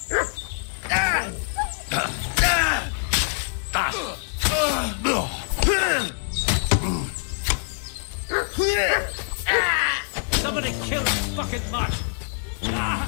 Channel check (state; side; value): silent; right; 62 dB below the other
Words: Somebody kill this fucking mutt!